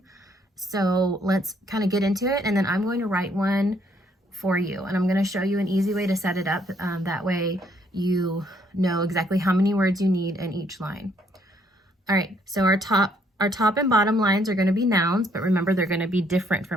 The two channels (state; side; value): normal; both; correlation 0.68